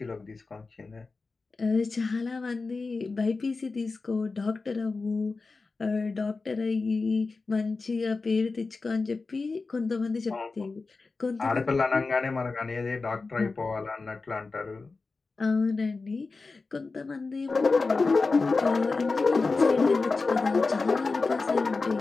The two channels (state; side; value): quieter; right; 4.0 dB